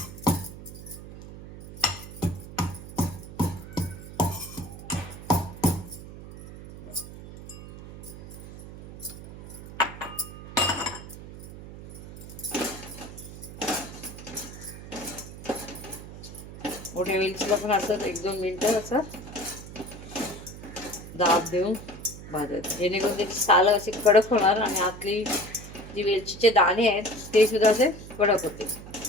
मोठ्या वेलचीला पण असं 1-2 मिनिटं असं दाब देऊन भाजायचं, जेणेकरून त्याची साल अशी कडक होणार आणि आतली जी वेलचीचे दाणे आहेत ते सुद्धा असे कडक होते.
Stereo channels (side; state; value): right; noise; hum, 13 dB below the sound